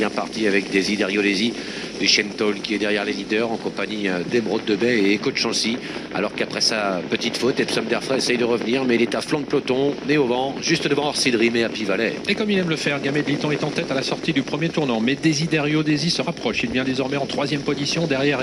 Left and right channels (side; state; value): both; identical; correlation 1.00